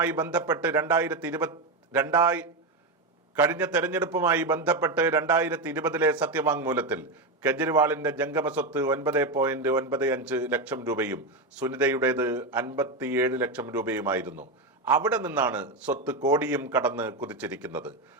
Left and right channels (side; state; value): left; quieter; 3.0 dB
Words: ബന്ധപ്പെട്ട് 2020 സത്യവാങ്മൂലത്തിൽ കെജ്രിവാളിന്റെ ജംഗമ സ്വത്ത് 9.95 ലക്ഷം രൂപയും സുനിതയുടേത് 57 ലക്ഷം രൂപയുമായിരുന്നു. അവിടെ നിന്നാണ് സ്വത്ത് കോടിയും കടന്ന് കുതിച്ചിരിക്കുന്നത്.